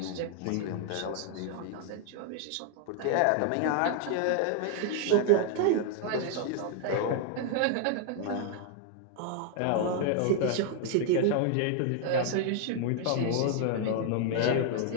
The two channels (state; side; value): different; both; correlation 0.00